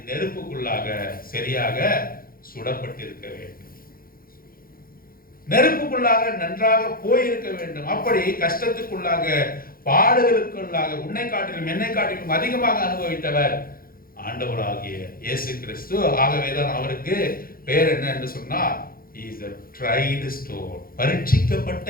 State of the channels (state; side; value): late; right; 0.42 ms